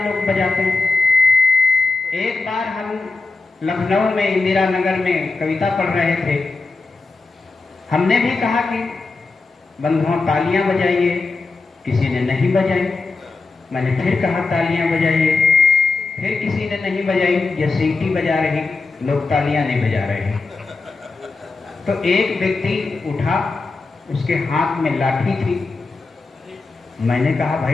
लोग बजाते हैं। एक बार हम लखनऊ में इंदिरा नगर में कविता पढ़ रहे थे। हमने भी कहा कि बंधुओं तालियां बजाइए, किसी ने नहीं बजाई। मैंने फिर कहा तालियां बजाइए, फिर किसी ने नहीं बजाई। ये सीटी बजा रही, लोग तालियां नहीं बजा रहे हैं। तो एक व्यक्ति उठा, उसके हाथ में लाठी थी। मैंने कहा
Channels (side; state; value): right; quieter; 3.8 dB